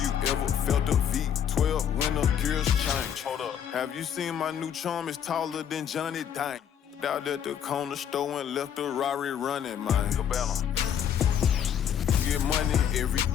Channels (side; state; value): right; quieter; 8.9 dB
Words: never felt a V12 when the gears change. Hold up. Have you seen my new charm? It's taller than Johnny Dang. Out at the corner store and left the Rari running, man. Cabela. Get money every